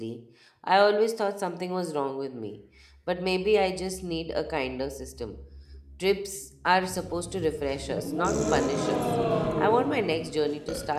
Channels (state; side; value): identical; both; correlation 1.00